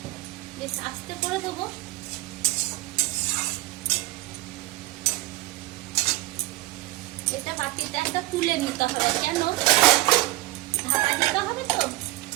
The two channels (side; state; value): left; quieter; 19.1 dB